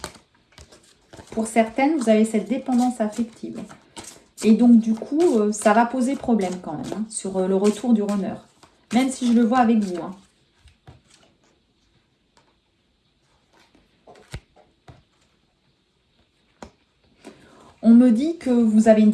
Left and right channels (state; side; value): identical; both; correlation 1.00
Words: Pour certaines, vous avez cette dépendance affective. Et donc, du coup, ça va poser problème quand même hein, sur le retour du runner. Même si je le vois avec vous. Hein. On me dit que vous avez une